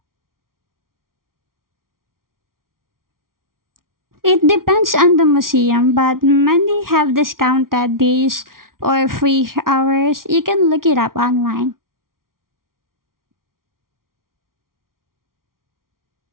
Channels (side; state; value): left; late; 0.92 ms